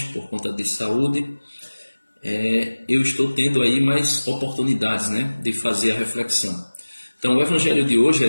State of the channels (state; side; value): inverted; both; correlation -1.00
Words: por conta de saúde, eu estou tendo aí mais oportunidades, de fazer a reflexão. Então, o Evangelho de hoje